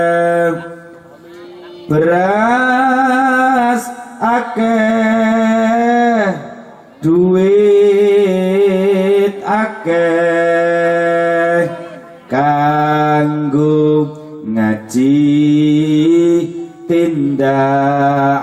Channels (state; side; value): identical; both; correlation 1.00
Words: beras akeh duit akeh kanggo ngaji